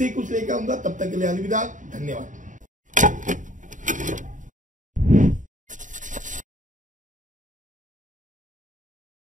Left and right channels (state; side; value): late; left; 0.37 ms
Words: ही कुछ लेकर आऊंगा। तब तक के लिए अलविदा, धन्यवाद।